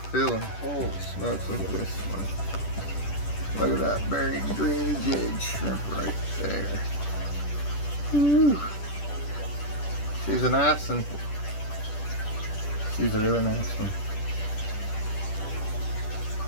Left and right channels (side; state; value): right; late; 10 ms